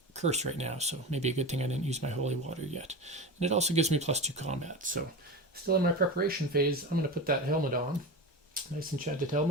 curse right now. So maybe a good thing I didn't use my holy water yet. And it also gives me +2 combat. So still in my preparation phase, I'm going to put that helmet on. Nice enchanted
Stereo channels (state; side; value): normal; both; correlation 0.26